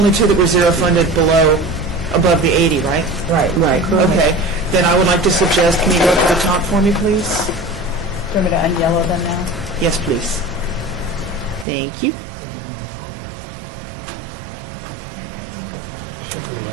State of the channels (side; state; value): left; drops out; at 11.7 s